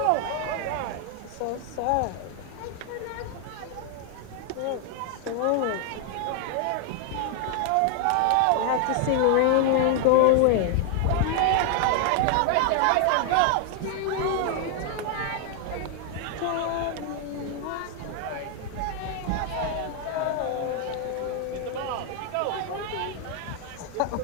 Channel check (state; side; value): different; both; correlation 0.00